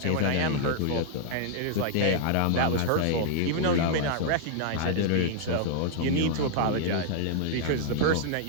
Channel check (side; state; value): both; different; correlation -0.01